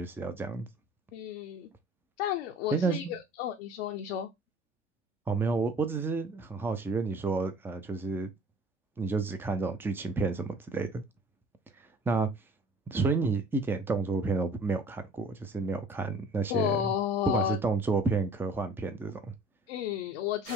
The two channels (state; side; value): normal; both; correlation 0.49